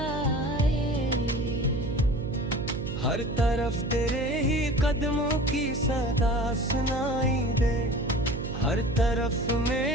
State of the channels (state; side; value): noise; right; hum, 6 dB below the sound